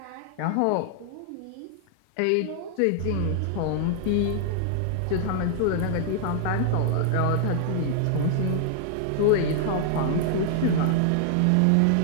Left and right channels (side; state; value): both; different; correlation -0.01